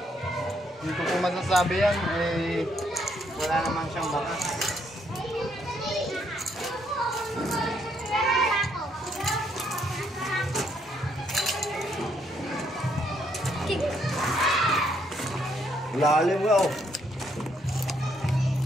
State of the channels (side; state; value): both; normal; correlation 0.72